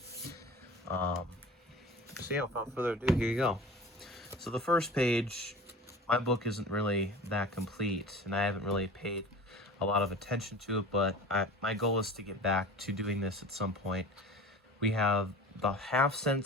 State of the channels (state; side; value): normal; both; correlation 0.37